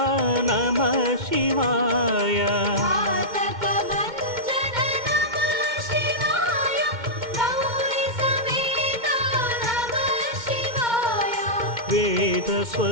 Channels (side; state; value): left; late; 2.1 ms